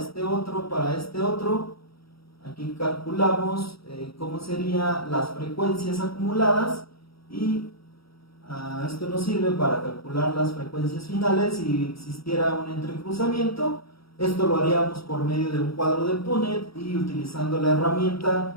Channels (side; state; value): right; late; 0.75 ms